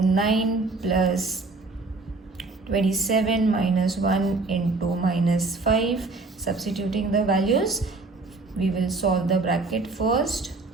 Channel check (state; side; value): quieter; left; 3.6 dB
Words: 9 plus 27 minus 1 into -5. Substituting the values, we will solve the bracket first,